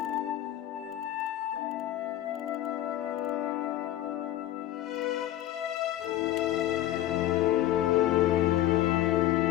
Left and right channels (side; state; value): right; quieter; 13.5 dB